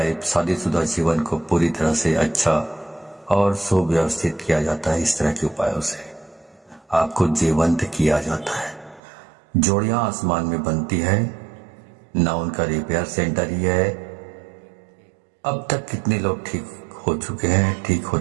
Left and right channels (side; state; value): left; drops out; at 9.0 s